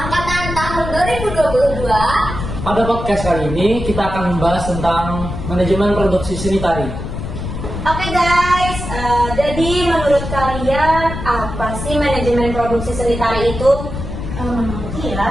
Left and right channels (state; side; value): noise; left; rumble, 6 dB below the sound